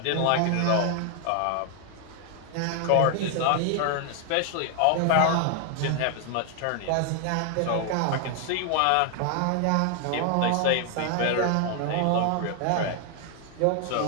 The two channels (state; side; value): different; both; correlation 0.00